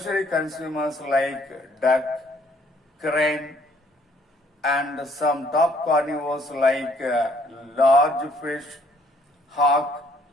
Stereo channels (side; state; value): both; normal; correlation 0.63